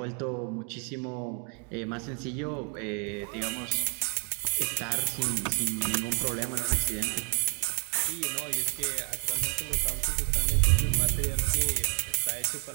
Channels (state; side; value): quieter; left; 38.6 dB